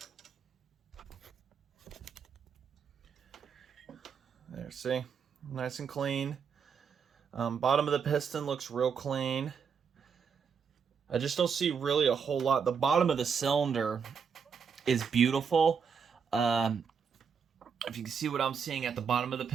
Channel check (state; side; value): quieter; left; 6.5 dB